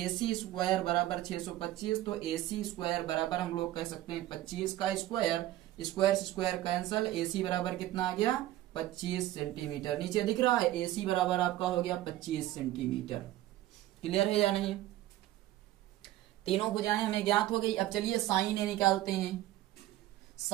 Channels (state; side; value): quieter; left; 14.8 dB